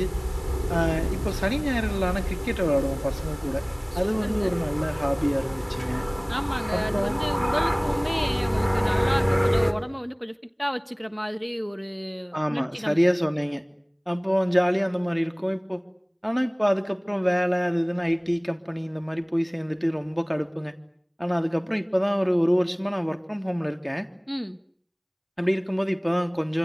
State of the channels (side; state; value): both; identical; correlation 1.00